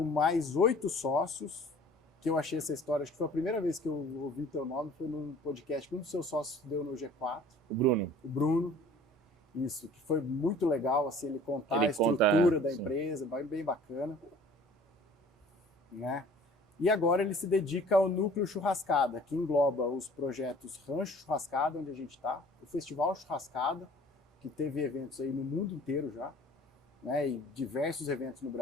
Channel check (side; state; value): both; normal; correlation 0.50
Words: mais 8 sócios, que eu achei essa história, acho que foi a primeira vez que eu ouvi teu nome, foi num podcast que um dos seus sócios deu no G4. O Bruno. O Bruno. Isso, que foi muito legal, assim, ele contar a estrutura da empresa, bem bacana. Né? E agora ele se dedica ao Núcleo Churrascada, que engloba os projetos Rancho Churrascada, onde a gente está, o Festival Churrascada, que teve eventos aí no mundo inteiro já, né? E diversos eventos no